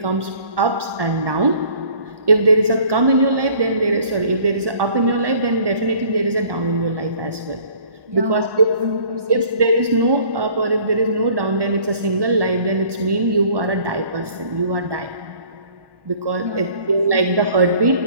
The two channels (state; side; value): late; left; 1.1 ms